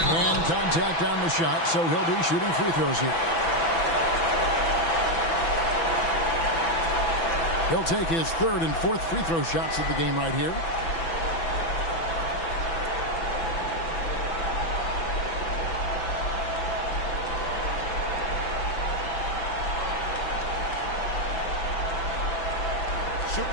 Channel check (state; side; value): late; right; 6.0 ms